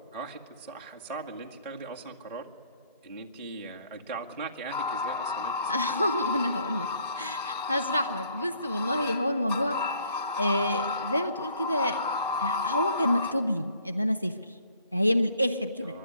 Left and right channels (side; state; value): both; inverted; correlation -0.63